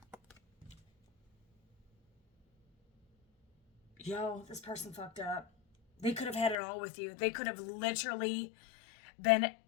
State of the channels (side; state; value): right; drops out; at 6.6 s